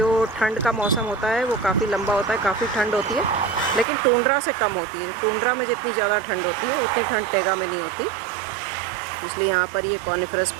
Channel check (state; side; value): drops out; left; at 3.9 s